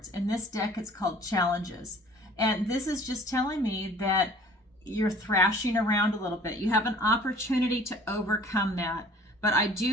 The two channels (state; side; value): normal; both; correlation 0.50